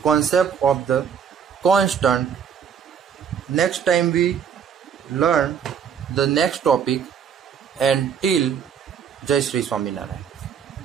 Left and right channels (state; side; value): quieter; left; 7.6 dB